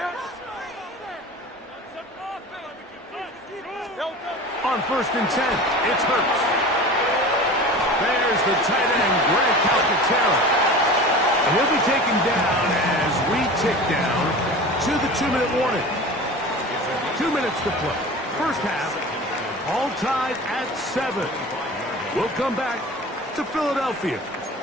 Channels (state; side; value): normal; both; correlation 0.36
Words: On 1st and 10, it's Hurts. There's the tight end, Greg Calcaterra. And he'll be taken down as we tick down to the 2-minute warning. 2 minutes to play. First half, all tied at 7. We'll come back to Philadelphia